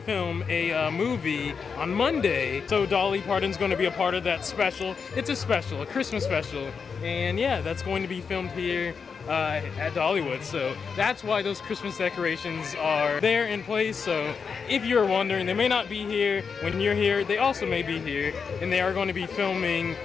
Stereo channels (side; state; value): right; quieter; 5.8 dB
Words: film, a movie on Monday. So Dolly Parton's going to be a part of that special. It's a special, a Christmas special. And yeah, that's going to be filmed here at Dollywood. So that's why those Christmas decorations are there in place. So if you're wondering, they may not be here when you're here. They also may be here, and they are going to be filming